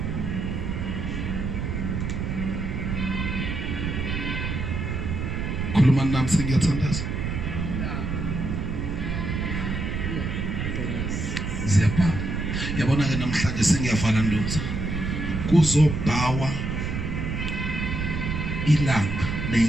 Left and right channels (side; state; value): right; noise; rumble, 2 dB below the sound